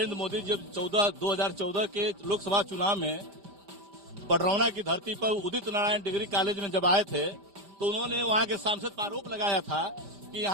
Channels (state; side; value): late; left; 5.0 ms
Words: मोदी जब 2014 के लोकसभा चुनाव में पडरौना की धरती पर उदित नारायण डिग्री कॉलेज में जब आए थे तो उन्होंने वहां के सांसद पर आरोप लगाया था कि